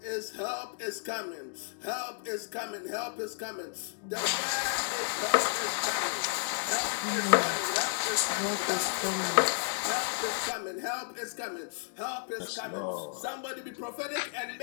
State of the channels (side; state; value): right; silent; digital silence